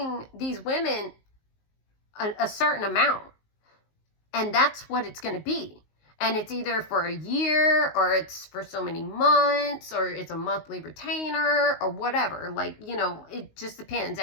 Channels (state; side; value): late; right; 19 ms